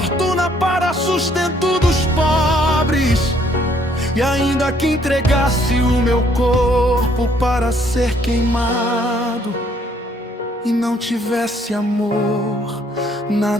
para sustento dos pobres, e ainda que entregasse o meu corpo para ser queimado, e não tivesse amor,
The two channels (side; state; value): both; normal; correlation 0.65